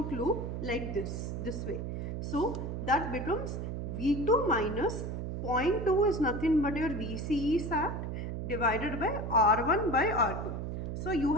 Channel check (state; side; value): noise; right; hum, 4 dB below the sound